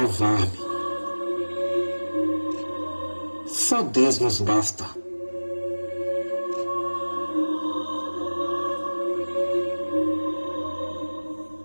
Só Deus nos basta.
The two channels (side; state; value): both; inverted; correlation -1.00